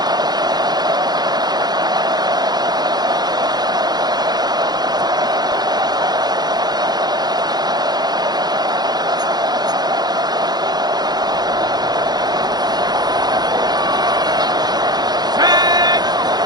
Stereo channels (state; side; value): late; left; 0.20 ms